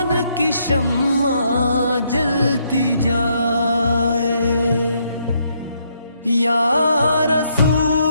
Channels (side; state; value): both; inverted; correlation -0.73